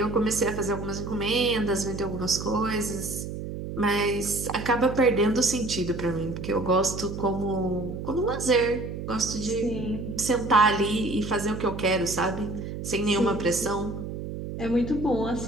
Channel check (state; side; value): noise; right; hum, 7 dB below the sound